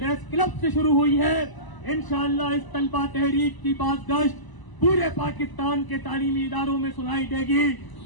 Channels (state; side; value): late; right; 1.0 ms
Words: क्लब से शुरू हुई है, इंशाअल्लाह इस तलबा तहरीक की बाज़गश्त पूरे पाकिस्तान के तालीमी इदारों में सुनाई देगी